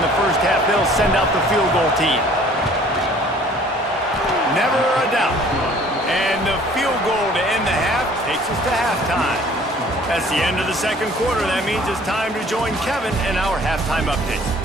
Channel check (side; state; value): both; normal; correlation 0.53